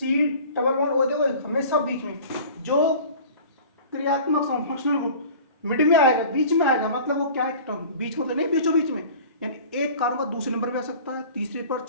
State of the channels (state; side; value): inverted; both; correlation -0.42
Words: डबल बॉन्ड ओ। देखो हमेशा बीच में जो क्रियात्मक समूह, फंक्शनल ग्रुप मिड में आएगा, बीच में आएगा, मतलब वो क्या है, कीटोन। बीच में तो नहीं, बीचों बीच में, यानी एक कार्बन का दूसरे नंबर पे आ सकता है, तीसरे पर,